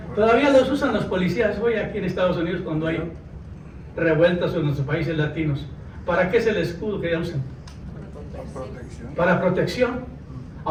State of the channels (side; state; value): both; identical; correlation 1.00